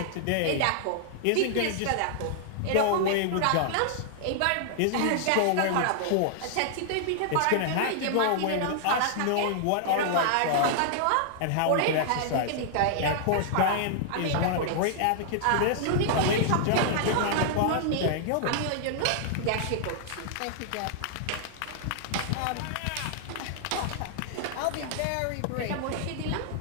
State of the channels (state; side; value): different; both; correlation -0.01